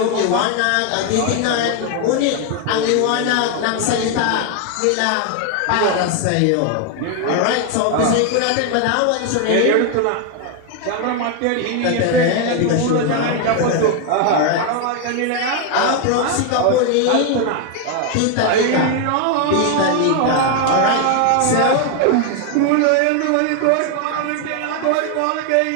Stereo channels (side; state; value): both; different; correlation 0.01